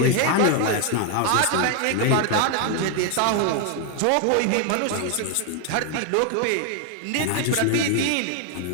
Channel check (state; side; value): different; both; correlation 0.00